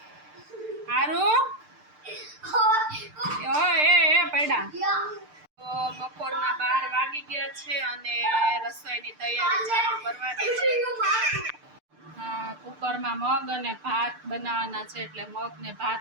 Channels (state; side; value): late; left; 6.7 ms